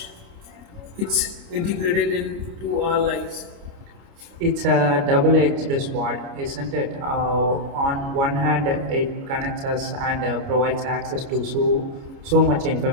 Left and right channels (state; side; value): late; left; 29 ms